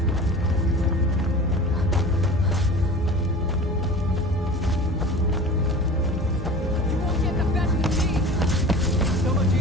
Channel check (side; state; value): both; normal; correlation 0.38